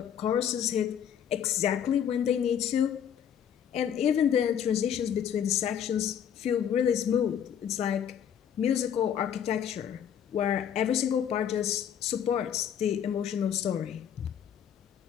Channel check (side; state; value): right; quieter; 8.9 dB